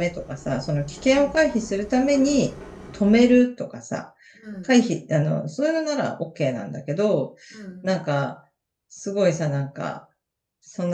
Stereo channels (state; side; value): identical; both; correlation 1.00